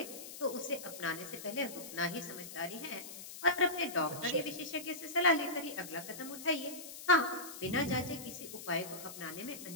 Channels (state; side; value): noise; left; hiss, 11 dB below the sound